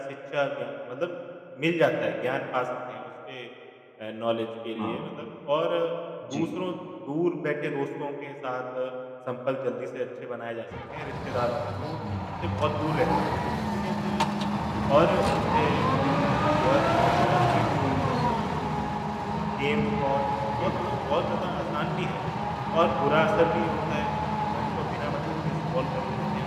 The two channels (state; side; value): identical; both; correlation 1.00